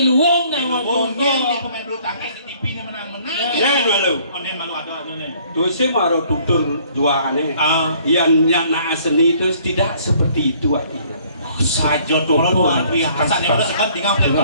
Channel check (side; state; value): both; inverted; correlation -0.60